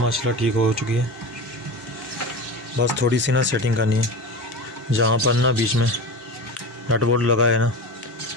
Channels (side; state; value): both; normal; correlation 0.28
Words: ठीक हो चुकी है। बस थोड़ी सी ना सेटिंग करनी है, जहाँ पर ना बीच में नट बोल्ट लगा है ना